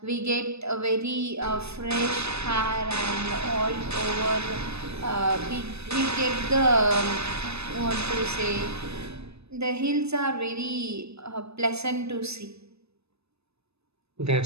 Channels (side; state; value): left; late; 0.79 ms